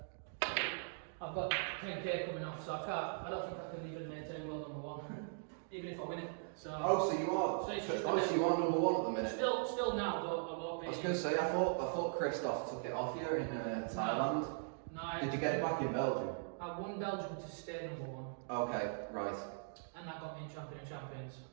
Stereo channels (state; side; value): silent; left; digital silence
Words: I've got 10k coming off, so I don't think I can even maintain World No.1, even if I win it. So So you are. So it's just So you are number one at the minute. still now, but I won't be. I was going to say, I thought Christoph took it off you in Thailand. No, Did you get it back in Belgium? I won Belgium to stay number one, Okay, right. and that got me in Champion of Champions.